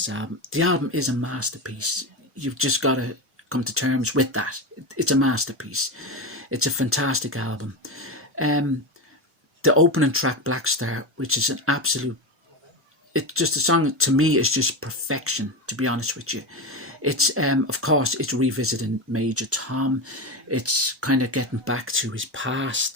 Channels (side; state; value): both; normal; correlation 0.18